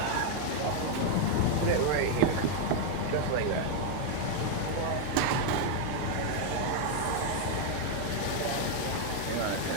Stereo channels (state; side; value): different; both; correlation 0.00